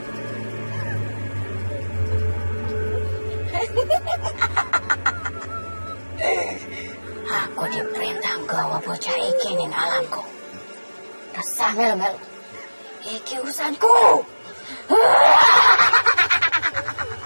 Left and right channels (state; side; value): inverted; both; correlation -1.00